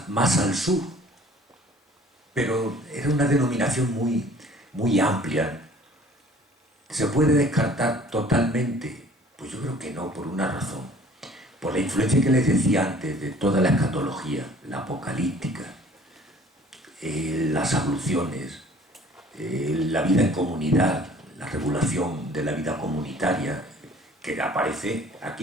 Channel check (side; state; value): both; normal; correlation 0.52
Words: más al sur, pero era una denominación muy amplia. ¿Se puede descartar totalmente? Pues yo creo que no, por una razón. Por la influencia que les decía antes de toda la escatología, la apocalíptica, las abluciones, la vida en comunidad, la regulación de la vida comunitaria, que aparece